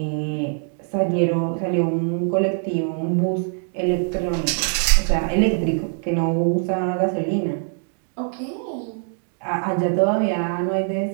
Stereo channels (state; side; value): silent; left; 60 dB below the other